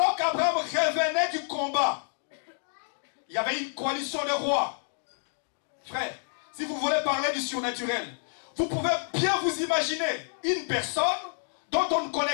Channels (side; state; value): right; silent; digital silence